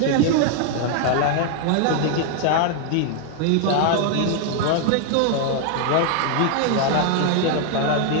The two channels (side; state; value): both; different; correlation 0.00